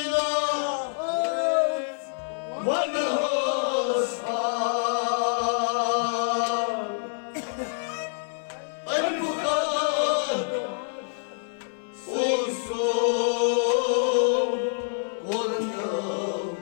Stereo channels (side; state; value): right; silent; digital silence